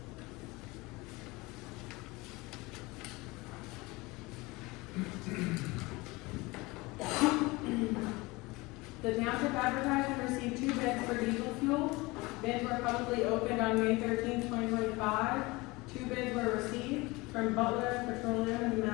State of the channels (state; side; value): quieter; right; 23.1 dB